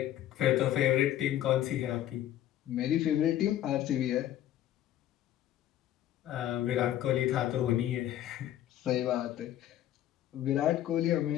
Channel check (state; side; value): quieter; right; 12.4 dB